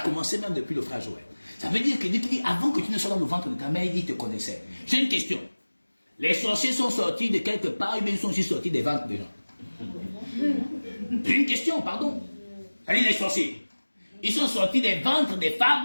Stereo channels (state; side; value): inverted; both; correlation -1.00